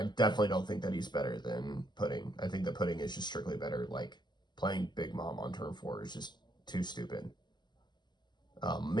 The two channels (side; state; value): right; late; 0.21 ms